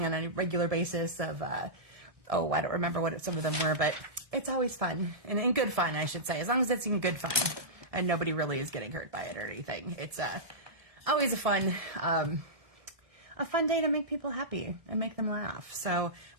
on a regular basis of, I don't remember what some of them were, but it's always fun, and in good fun, I should say, as long as it's in good fun, and nobody really is getting hurt by it or anything. It's always a fun day to make people happy and make them laugh. So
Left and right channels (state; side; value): late; left; 1.7 ms